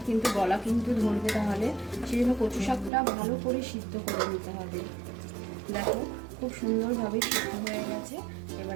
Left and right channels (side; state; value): left; drops out; at 2.9 s